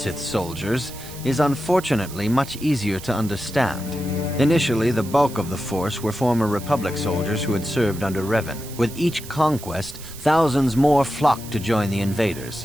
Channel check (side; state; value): right; noise; hiss, 15 dB below the sound